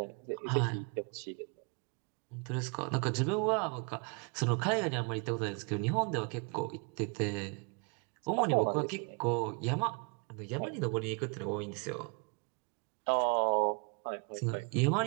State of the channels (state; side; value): quieter; left; 34.1 dB